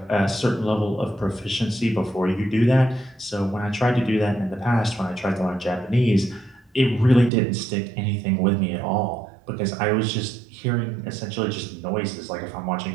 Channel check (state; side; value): drops out; left; at 7.3 s